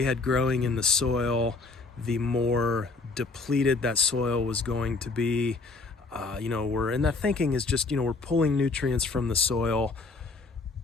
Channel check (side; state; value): right; quieter; 3.8 dB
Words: had growing in the soil, the more depleted that soil was going to be. That thinking is just, we're pulling nutrients from the soil